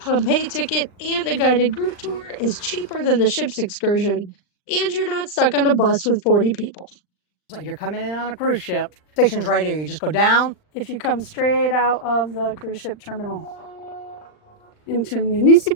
ticket, and a guided group tour is cheaper than the ship's excursion, and you're not stuck on a bus with 40 people. So you're coming in on a cruise ship. Station's right here. You just go down. If you come straight out of the cruise ship terminal into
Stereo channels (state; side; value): late; right; 39 ms